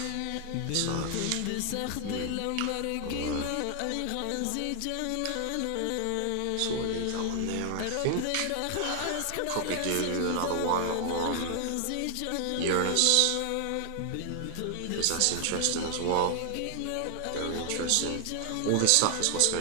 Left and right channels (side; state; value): both; different; correlation 0.00